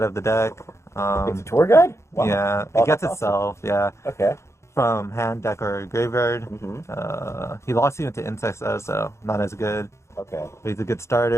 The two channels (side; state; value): right; late; 0.13 ms